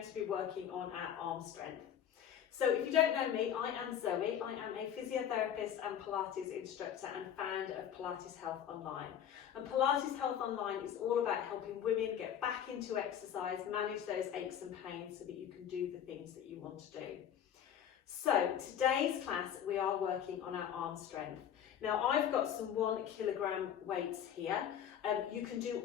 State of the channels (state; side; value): quieter; right; 9.4 dB